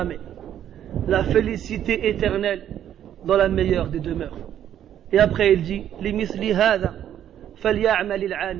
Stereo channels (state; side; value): quieter; left; 10.5 dB